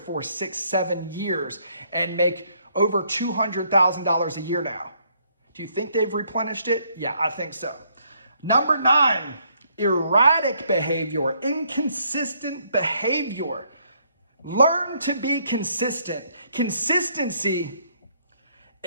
6-7 years and make over $200,000 a year now. Do you think they've replenished it? Yeah, I think so. Number 9, erratic behavior, inconsistent behavior. Learn to be consistent. Consistency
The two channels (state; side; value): inverted; both; correlation -0.69